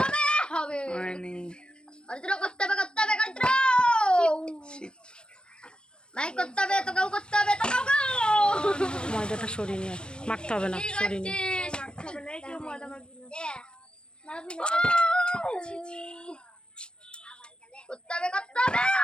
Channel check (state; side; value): late; right; 0.050 ms